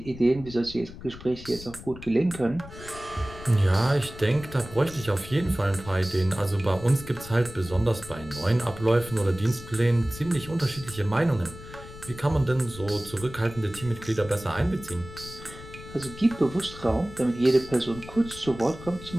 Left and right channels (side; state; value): left; noise; rumble, 15 dB below the sound